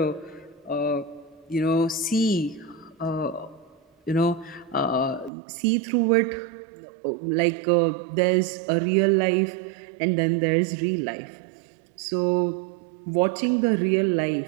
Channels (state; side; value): drops out; left; at 5.3 s